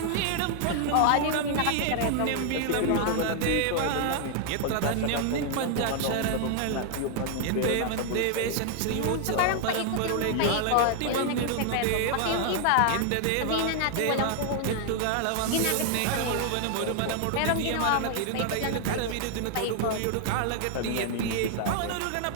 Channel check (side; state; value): both; different; correlation 0.00